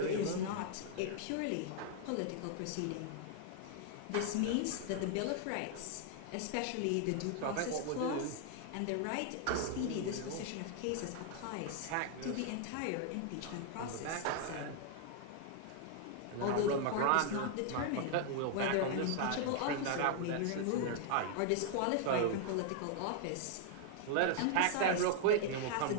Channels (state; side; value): different; both; correlation 0.00